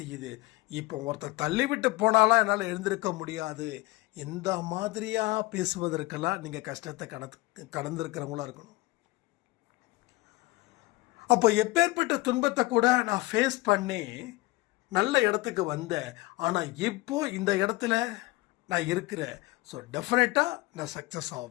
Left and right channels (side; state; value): right; quieter; 20.8 dB